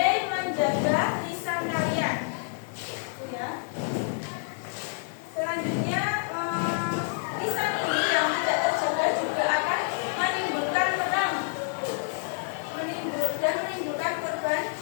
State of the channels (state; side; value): silent; right; digital silence